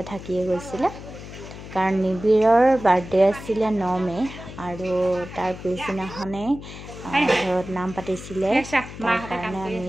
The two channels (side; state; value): left; noise; hum, 13 dB below the sound